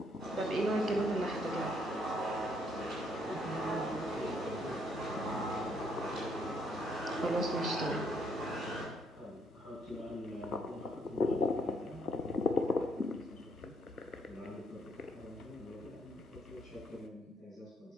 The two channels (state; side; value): normal; both; correlation 0.71